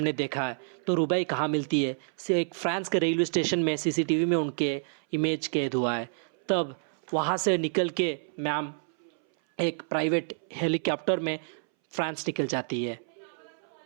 देखा है। तो रुबई कहाँ मिलती है, से एक फ्रांस के रेलवे स्टेशन में सीसीटीवी में उनके इमेज कैद हुआ है। तब वहाँ से निकल के मैम एक प्राइवेट हेलीकॉप्टर में फ्रांस निकल जाती है।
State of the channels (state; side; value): silent; left; 59 dB below the other